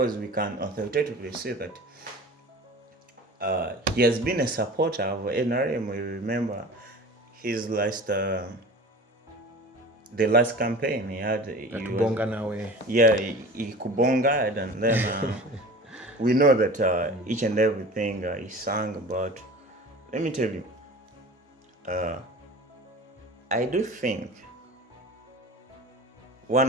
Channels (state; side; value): normal; both; correlation 0.38